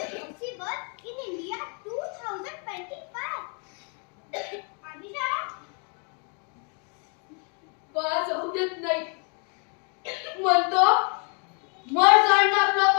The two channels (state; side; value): quieter; right; 38.6 dB